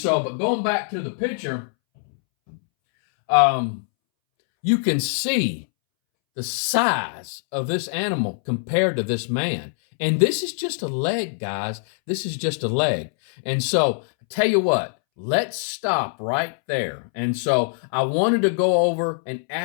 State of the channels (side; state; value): right; silent; 63 dB below the other